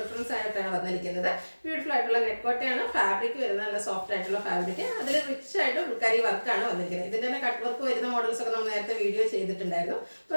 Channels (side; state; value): both; inverted; correlation -1.00